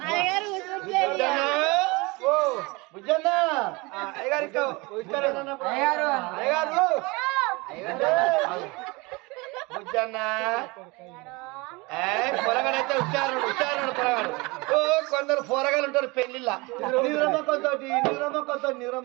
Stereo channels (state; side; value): quieter; left; 25.4 dB